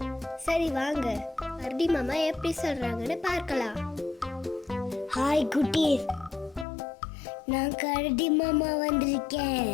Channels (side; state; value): right; drops out; at 6.7 s